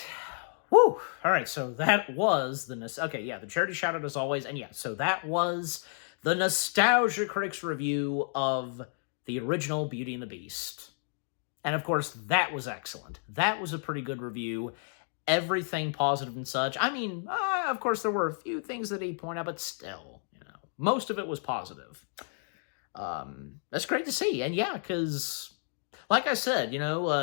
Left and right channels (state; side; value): silent; right; 57 dB below the other